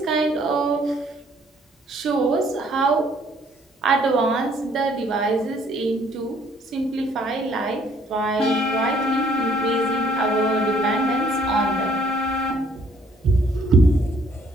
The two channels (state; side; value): normal; both; correlation 0.62